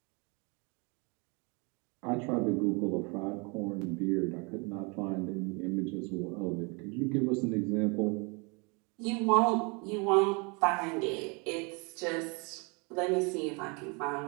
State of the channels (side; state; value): left; quieter; 30.9 dB